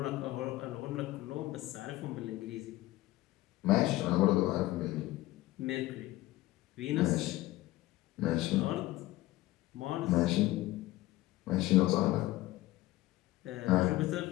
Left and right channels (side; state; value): right; quieter; 17.3 dB